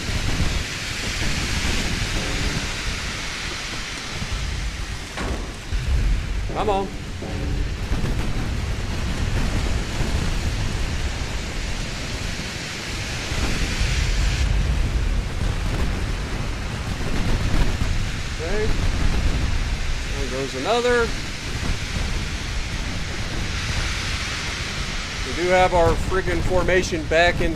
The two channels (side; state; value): both; identical; correlation 1.00